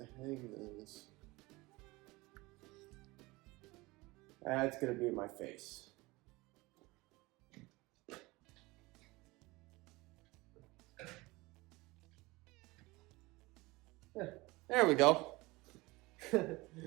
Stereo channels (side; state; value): left; quieter; 22.2 dB